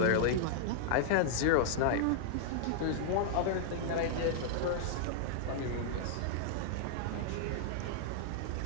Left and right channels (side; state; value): both; different; correlation -0.01